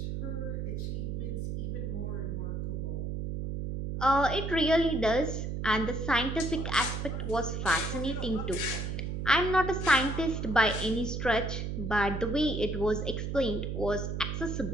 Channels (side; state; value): right; noise; hum, 3 dB below the sound